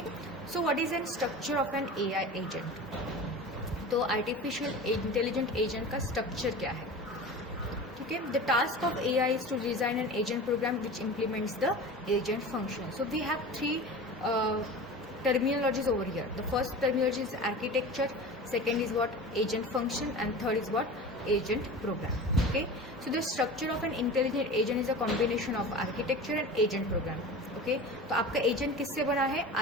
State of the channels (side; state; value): both; normal; correlation 0.34